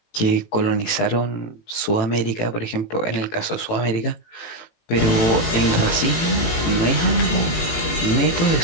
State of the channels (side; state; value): right; late; 18 ms